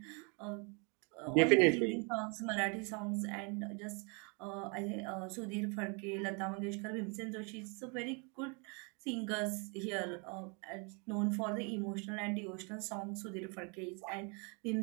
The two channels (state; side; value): quieter; left; 34.4 dB